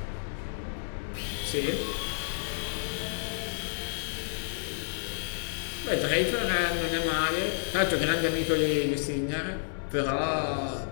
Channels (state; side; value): silent; right; digital silence